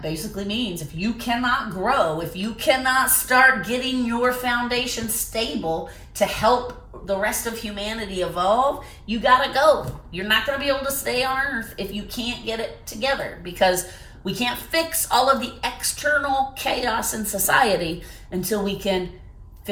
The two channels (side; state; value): both; identical; correlation 1.00